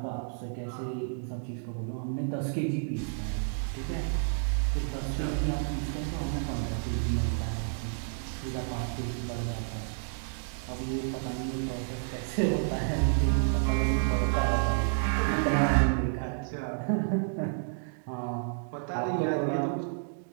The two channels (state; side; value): silent; left; digital silence